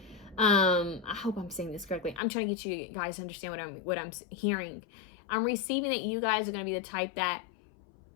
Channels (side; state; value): right; drops out; at 2.2 s